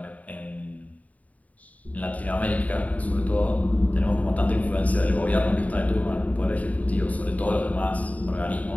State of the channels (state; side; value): late; right; 0.071 ms